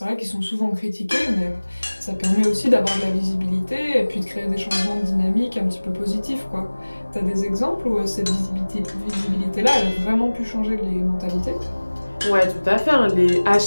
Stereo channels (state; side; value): inverted; both; correlation -1.00